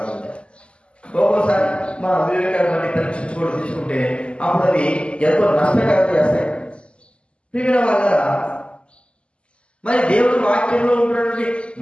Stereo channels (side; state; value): right; late; 0.053 ms